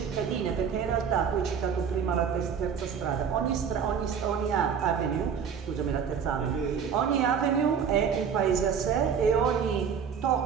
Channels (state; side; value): quieter; left; 7.0 dB